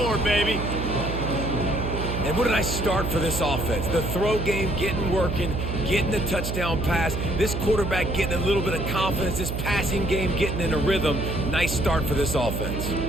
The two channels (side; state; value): right; noise; hum, 4 dB below the sound